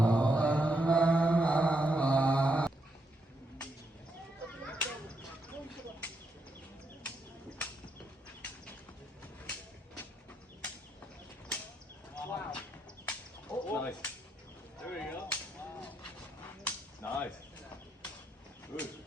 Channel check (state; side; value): normal; both; correlation 0.79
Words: Wow. Oh, nice. There we go. Nice. Good.